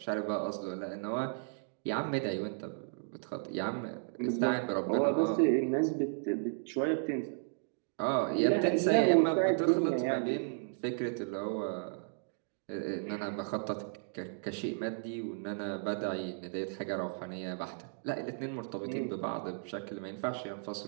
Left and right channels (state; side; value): silent; left; digital silence